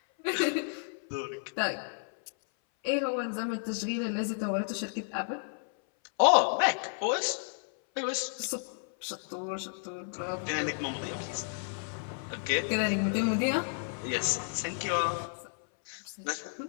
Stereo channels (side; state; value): right; silent; 57 dB below the other